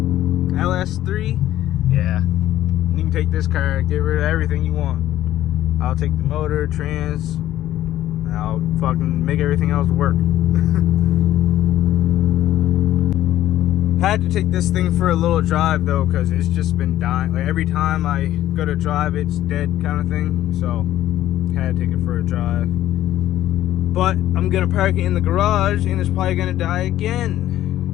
LS3, yeah, you can take this car, get rid of everything you want. I'll take the motor, trans. I'll fucking make everything else work. Had to take this thing for a little drive though, because it's just been dying. Like every time I go to drive, it's dead kind of thing. So had to take it for a drive. But I'm gonna park it in the garage and it's probably gonna die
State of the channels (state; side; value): quieter; right; 13.3 dB